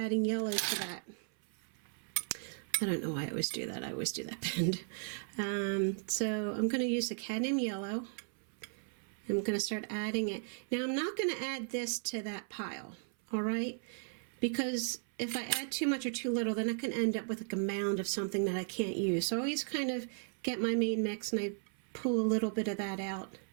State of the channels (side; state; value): left; silent; 54 dB below the other